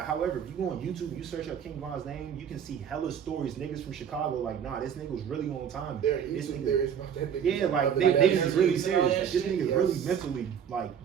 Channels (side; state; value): left; quieter; 8.1 dB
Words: however, if you go on YouTube, you search up King Von's name, you can see hella stories. Niggas from Chicago, like, nah, this nigga was really on time. There are This YouTube nigga- theories about that nigga. Yeah, like, Like, niggas is really you see all serious. that Like, this shit? nigga's really Yes. mentally,